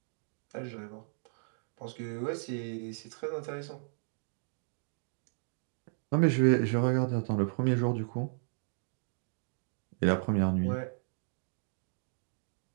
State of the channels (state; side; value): silent; left; digital silence